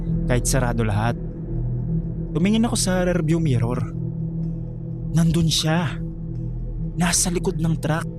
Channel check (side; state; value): both; identical; correlation 1.00